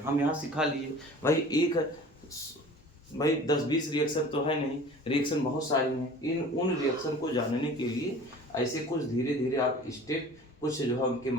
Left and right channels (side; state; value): both; normal; correlation 0.44